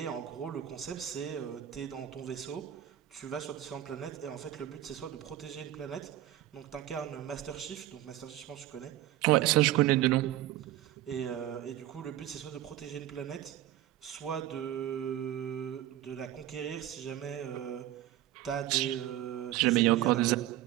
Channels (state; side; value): quieter; left; 13.4 dB